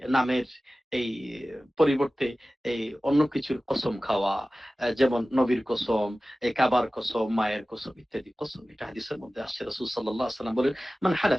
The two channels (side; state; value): both; normal; correlation 0.96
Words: নামের এই পরিবর্তে এই অন্য কিছুর কসম খাওয়া, যেমন নবীর কসম, এই কাবার কসম, মায়ের কসম ইত্যাদি কসম, এটা হাদিসের মধ্যে আসছে। রাসূল সাল্লাল্লাহু আলাইহি ওয়াসাল্লাম বলেন, মান